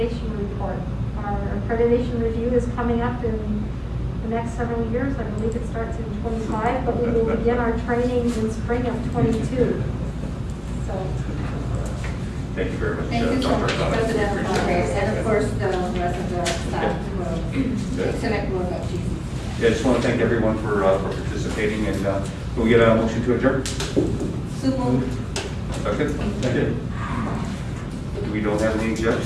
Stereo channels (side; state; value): both; identical; correlation 1.00